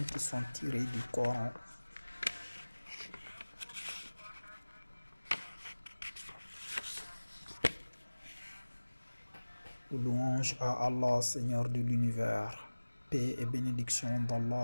qui sont tirées du Coran. Louange à Allah, Seigneur de l'univers. Paix et bénédiction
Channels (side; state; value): both; inverted; correlation -1.00